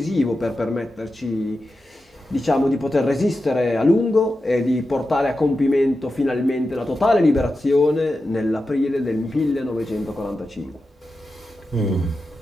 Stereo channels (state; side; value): normal; both; correlation 0.91